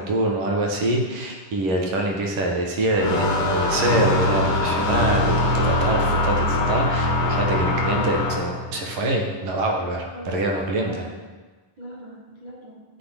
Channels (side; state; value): left; late; 11 ms